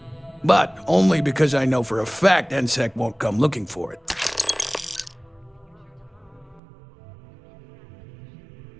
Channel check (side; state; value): left; drops out; at 6.6 s